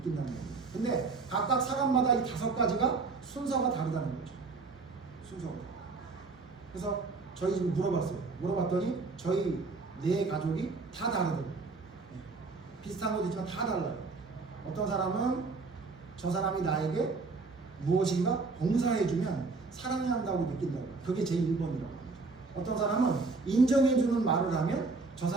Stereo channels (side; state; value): left; quieter; 4.0 dB